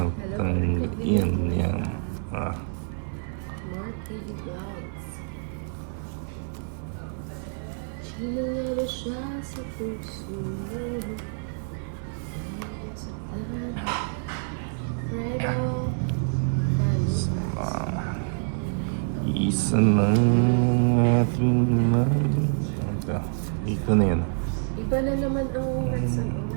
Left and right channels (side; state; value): left; silent; 60 dB below the other